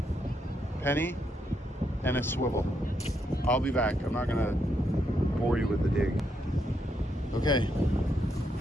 and a swivel. I'll be back. I'm not gonna bore you with the dig. Okay,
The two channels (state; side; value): normal; both; correlation 0.78